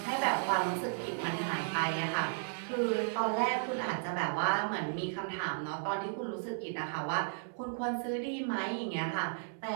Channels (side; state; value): left; silent; digital silence